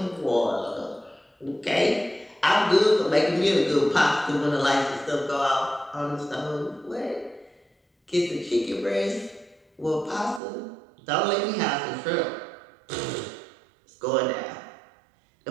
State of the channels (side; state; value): left; drops out; at 10.4 s